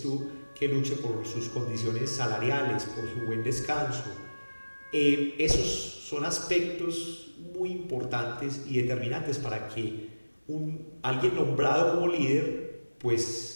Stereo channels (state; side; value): inverted; both; correlation -1.00